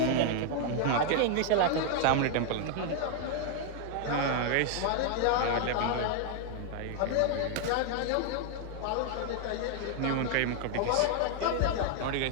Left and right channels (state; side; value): different; both; correlation 0.00